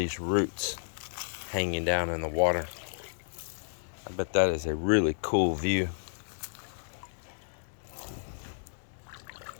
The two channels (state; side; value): silent; right; digital silence